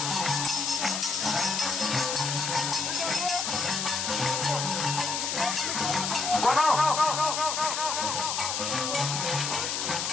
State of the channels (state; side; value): noise; left; hiss, 1 dB below the sound